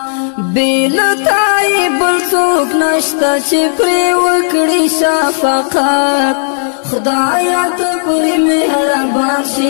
بیلتائی بلسوک نشتا چی پری وکڑی شفقات خدایا تا پری مہربان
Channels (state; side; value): silent; right; digital silence